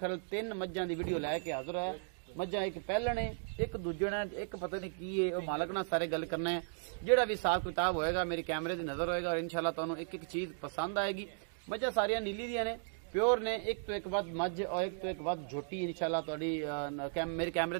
तीन मज्जां दी वीडियो लैके हाजिर है। मज्जां एक पहलण है, एक दूजण है, एक पता नहीं की है, वो मालक नाल सारे गल करना है। जिहड़ा भी हिसाब किताब होएगा मेरे कैमरे दी नज़र होएगा और इंशाल्लाह तुहानूं एक एक चीज़ पसंद आएगी। मज्जां सारियां नीली दियां ने, प्योर ने, एक तो एक वध मझ और एक तो एक वध झोटी इंशाल्लाह तुहाडी मेरे कैमरे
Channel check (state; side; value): silent; left; digital silence